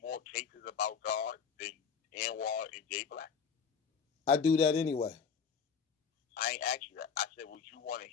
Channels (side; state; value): right; quieter; 6.4 dB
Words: more cases about God than Anwar and Jay Black? I do that anyway. I ain't asked you that. I said, would you want to